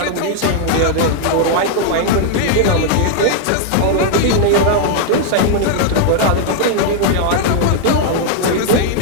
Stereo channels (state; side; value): different; both; correlation 0.00